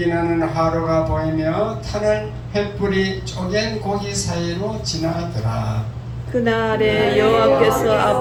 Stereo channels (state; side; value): identical; both; correlation 1.00